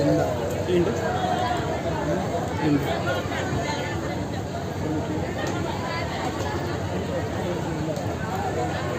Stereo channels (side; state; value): both; identical; correlation 1.00